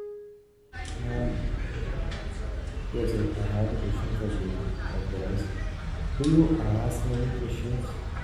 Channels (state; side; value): identical; both; correlation 1.00